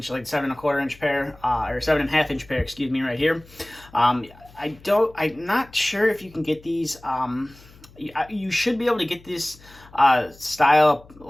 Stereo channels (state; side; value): noise; left; hum, 24 dB below the sound